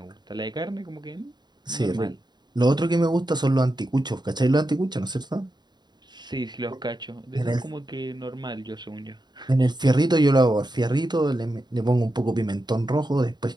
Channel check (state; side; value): late; left; 0.21 ms